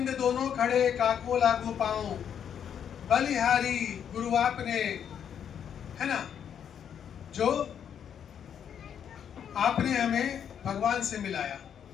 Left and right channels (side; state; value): right; quieter; 8.5 dB